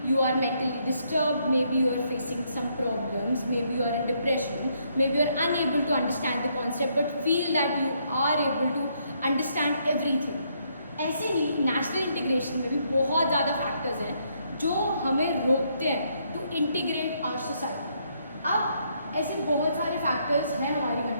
you are mentally disturbed, maybe you are facing some problems, maybe you are in depression, maybe you are unable to understand the concept but feel that you are able to understand everything. ऐसे ही national integration में भी बहुत ज़्यादा factors हैं जो हमें रोकते हैं टू इंटीग्रेट आवर सोसाइटी। अब ऐसे बहुत सारे फैक्टर्स हैं हमारी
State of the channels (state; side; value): inverted; both; correlation -0.73